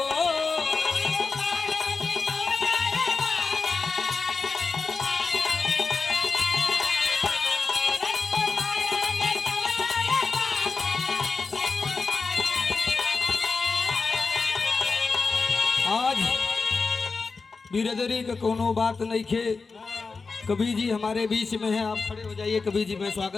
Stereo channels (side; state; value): right; quieter; 4.4 dB